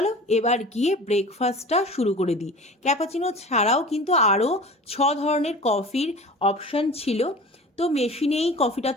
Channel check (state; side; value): normal; both; correlation 0.39